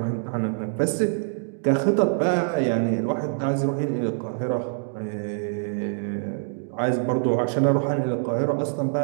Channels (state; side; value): silent; left; digital silence